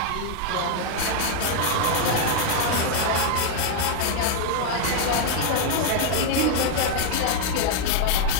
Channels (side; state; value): both; different; correlation 0.00